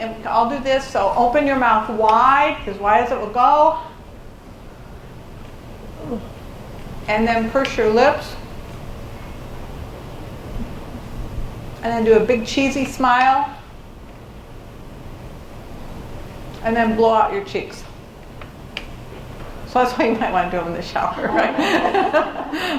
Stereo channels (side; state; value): both; identical; correlation 1.00